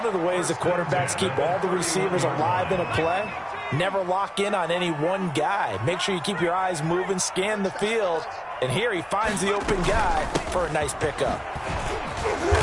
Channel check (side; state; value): both; identical; correlation 1.00